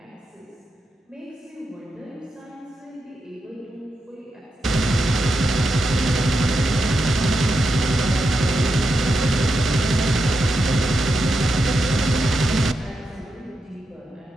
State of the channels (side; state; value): both; normal; correlation 0.86